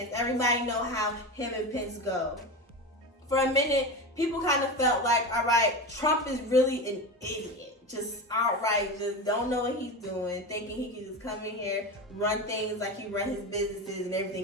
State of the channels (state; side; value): normal; both; correlation 0.23